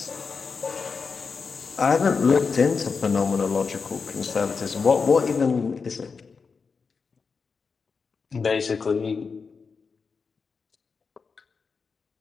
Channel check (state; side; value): quieter; right; 5.1 dB